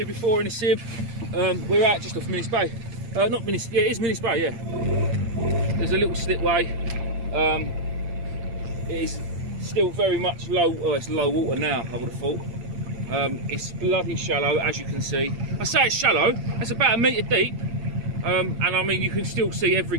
before in a sib. We're out just off Minnis Bay. Not Minnis, yeah, it is Minnis Bay, yeah. There's a little slipway. It is still very much low, it's low water now, I would have thought. It's bloody shallow, as you can see. I say it's shallow, it's about 1 metre deep. And I mean, you can still see every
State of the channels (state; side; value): late; left; 8.7 ms